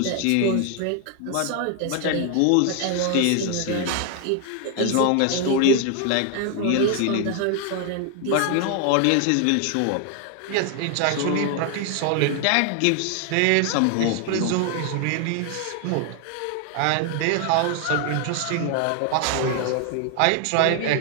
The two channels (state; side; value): different; both; correlation 0.00